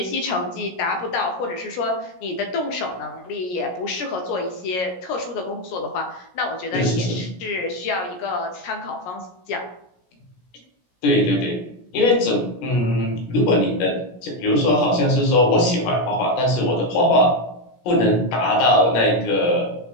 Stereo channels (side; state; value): right; late; 17 ms